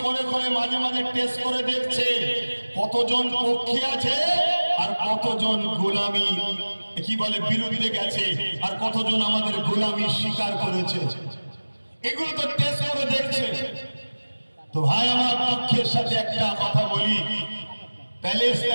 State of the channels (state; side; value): inverted; both; correlation -1.00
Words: করে করে মাঝে মাঝে টেস্ট করে দেখছে কতজন পক্ষে আছে আর কতজন গোলামি কি বলে বিরুদ্ধে গেছে, আর কতজন আমাদের গোলামি স্বীকার করেছে। এগুলো তো টেস্ট করে দেখছে। তো ভাই আমার দুঃখের সাথে একটা কথা বলি,